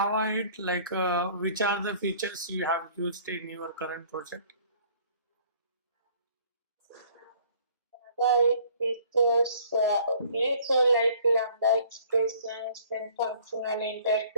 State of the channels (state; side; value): inverted; both; correlation -0.55